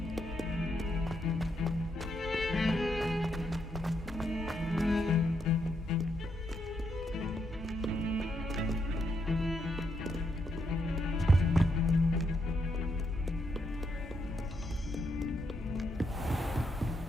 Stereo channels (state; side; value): normal; both; correlation 0.79